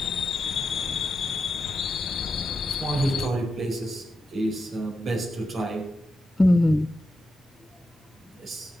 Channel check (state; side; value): normal; both; correlation 0.88